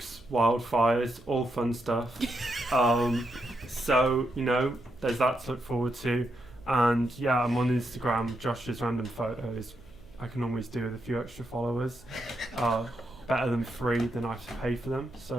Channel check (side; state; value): right; noise; hum, 24 dB below the sound